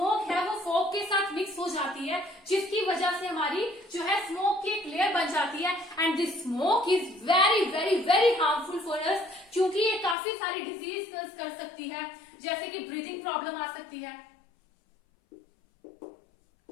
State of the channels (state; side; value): drops out; right; at 10.2 s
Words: है वो फॉग के साथ मिक्स हो जाती है, जिसकी वजह से हमारी जो है स्मोक की एक लेयर बन जाती है। And this smoke is very very very harmful for us, क्योंकि ये काफी सारी डिजीज कर सकती है, जैसे कि ब्रीदिंग प्रॉब्लम आ सकती है,